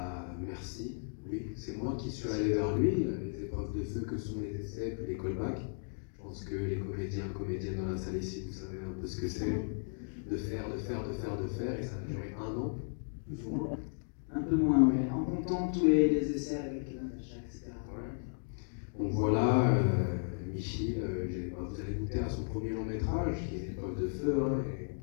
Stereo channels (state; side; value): silent; right; digital silence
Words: merci. Oui, c'est moi qui suis allé vers lui. Les épreuves de feu que sont les essais puis les callbacks. Je pense que les comédiennes dans la salle ici, vous savez un peu ce que c'est. De faire, et ça a duré 1 an, plus ou moins. Un peu moins, oui. En comptant temps tous les essais avec Natacha, etc. Ouais. Donc voilà, Michel, vous allez goûter à son premier long métrage, qui est une épreuve de feu. Hein,